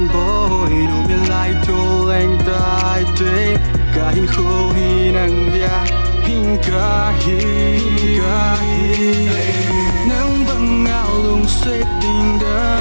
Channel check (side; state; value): both; inverted; correlation -1.00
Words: bôi đủ miền lại thô anh tai thế cả hình khô hi năng dia hình cả hi nắng bằng ngao lung sẽ tình đó